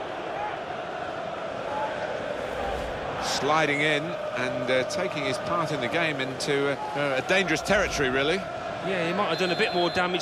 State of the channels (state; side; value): identical; both; correlation 1.00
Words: Sliding in and taking his part in the game into a dangerous territory, really. Yeah, he might have done a bit more